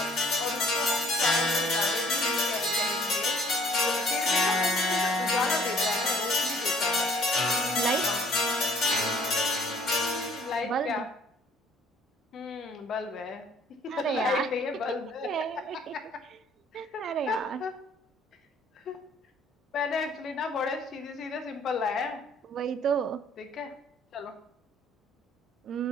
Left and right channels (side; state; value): both; normal; correlation 0.59